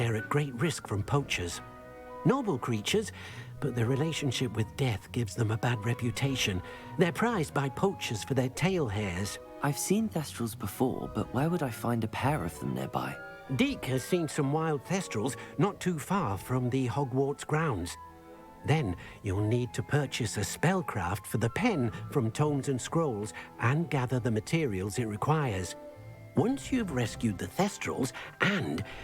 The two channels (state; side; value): identical; both; correlation 1.00